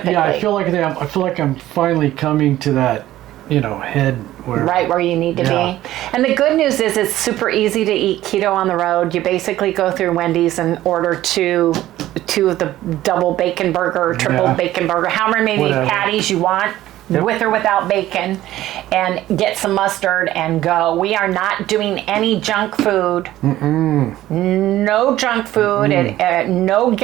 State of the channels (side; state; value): left; quieter; 14.5 dB